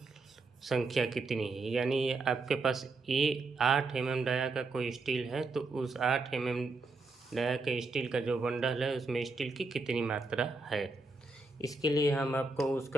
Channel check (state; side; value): quieter; left; 3.6 dB